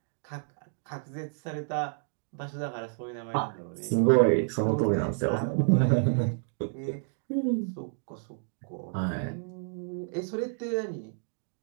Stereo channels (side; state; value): left; silent; digital silence